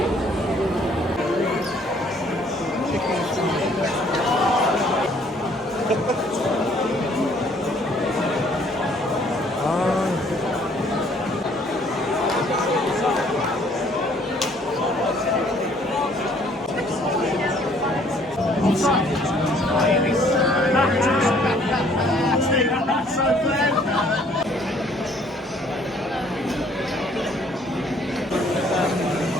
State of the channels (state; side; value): normal; both; correlation 0.61